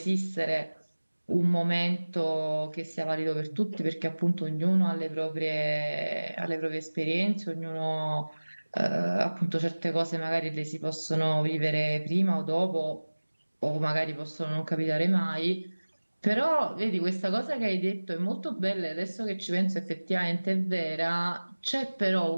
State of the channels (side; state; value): both; inverted; correlation -1.00